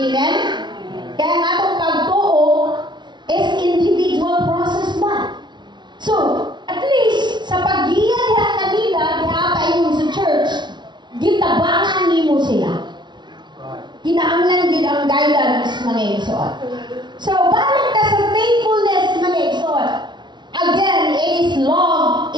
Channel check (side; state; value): left; late; 0.21 ms